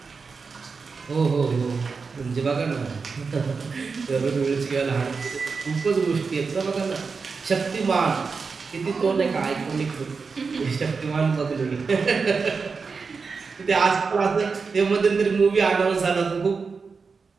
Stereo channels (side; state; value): left; quieter; 4.9 dB